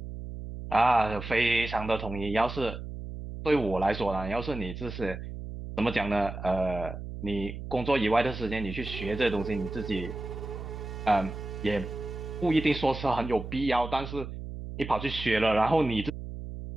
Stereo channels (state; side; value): noise; right; hum, 9 dB below the sound